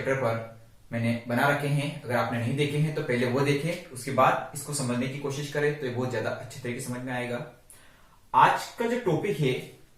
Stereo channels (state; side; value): identical; both; correlation 1.00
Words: पर मैंने बना रखे हैं। अगर आपने नहीं देखे हैं तो पहले वो देखें, उसके बाद इसको समझने की कोशिश करें तो ये बहुत ज्यादा अच्छे तरीके से समझ में आएगा। आज का जो टॉपिक है